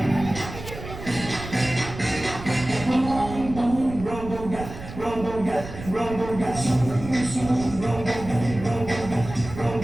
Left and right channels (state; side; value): noise; right; rumble, 11 dB below the sound